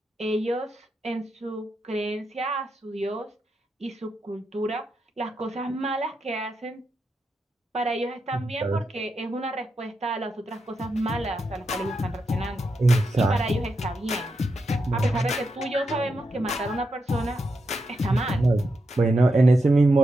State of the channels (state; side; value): normal; both; correlation 0.85